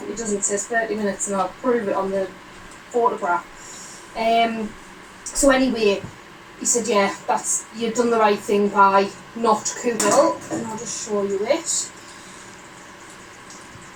doesn't, it says 30 minutes, and I'll prove it on the photograph. So anyway, he said, yeah, you've done the right thing by not cooking it, and I'll just show you it.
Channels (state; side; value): identical; both; correlation 1.00